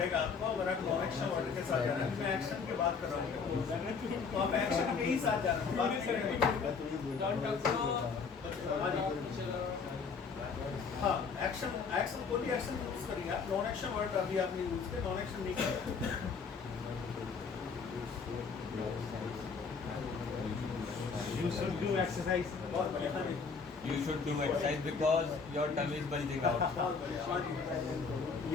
आपको, अगर आप नॉन एक्शन वर्ड के साथ जा रहे हैं। मैं एक्शन की बात कर रहा हूँ, तो आप एक्शन के ही साथ जा रहे हैं, बात नहीं करेंगे। Don't talk to हाँ जी, teacher. हाँ, एक्शन एक्शन कोई भी एक्शन यूज करिए आप। नॉन एक्शन वर्ड अभी आपने यूज किया, नॉन एक्शन नहीं करें। You should do exercise. बहुत बढ़िया। हाँ जी, You should do exercise because your tummy is bulging out. बहुत बढ़िया। हाँ जी,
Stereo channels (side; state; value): right; quieter; 5.3 dB